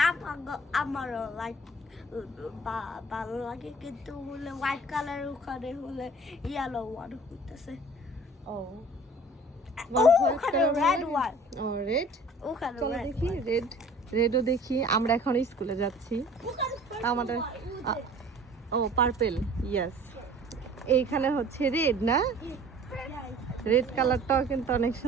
আমারও like ভালো লাগে কিন্তু হলে white color ওখানে হলে yellow one হইতেছে। ও ওখানে red one. ও রেড। ওখানে চলো red দেখি one. রেডও দেখি। আমরা এখন স্কুলে যাচ্ছি। ওখানে আমাদের ও পার্পল, ইয়েস। এইখানে হচ্ছে রেড না? রেড কালারটাও কিন্তু অনেক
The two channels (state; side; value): normal; both; correlation 0.48